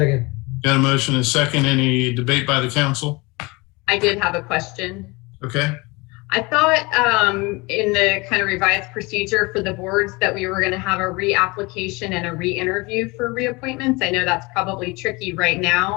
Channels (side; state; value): right; quieter; 25.3 dB